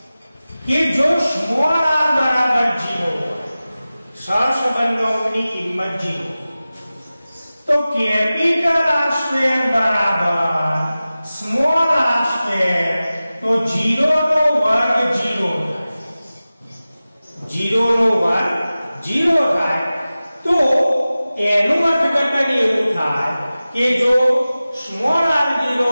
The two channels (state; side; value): inverted; both; correlation -0.96